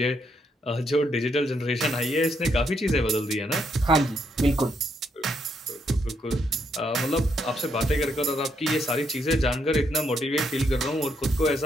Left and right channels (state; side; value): normal; both; correlation 0.76